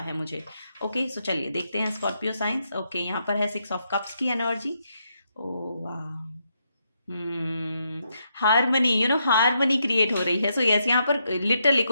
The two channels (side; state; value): both; inverted; correlation -0.80